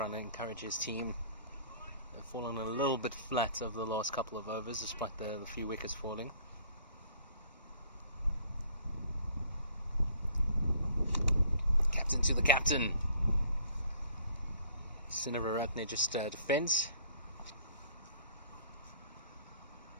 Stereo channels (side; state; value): both; inverted; correlation -0.56